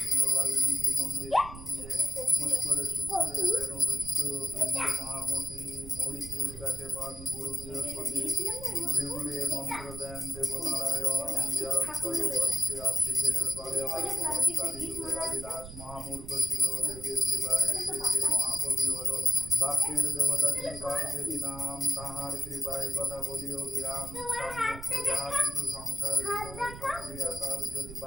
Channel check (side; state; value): right; noise; rumble, 12 dB below the sound